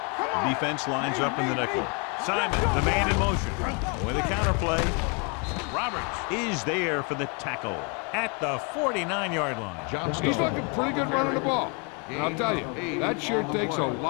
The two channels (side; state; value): right; quieter; 34.6 dB